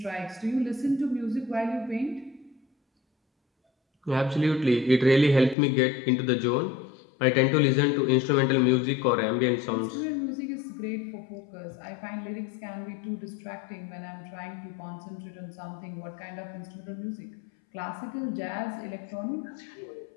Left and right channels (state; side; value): drops out; right; at 5.6 s